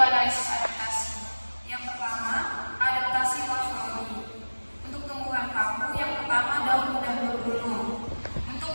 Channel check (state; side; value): inverted; both; correlation -1.00